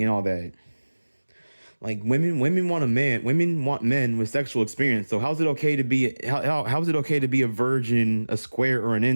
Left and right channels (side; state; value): both; inverted; correlation -1.00